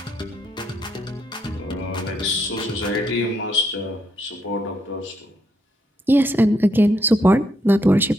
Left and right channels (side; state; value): both; normal; correlation 0.76